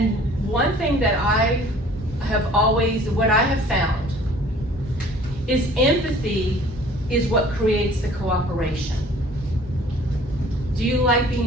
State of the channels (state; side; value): normal; both; correlation 0.52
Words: one thing that I have always, what I have found, is empathy is what creates the cooperation. Do you like